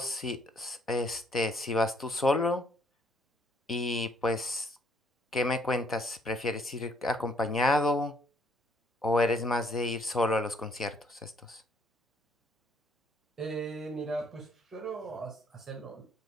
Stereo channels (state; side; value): normal; both; correlation 0.66